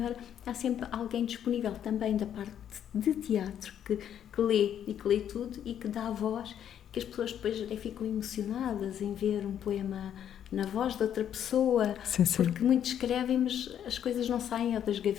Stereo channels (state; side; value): quieter; right; 9.7 dB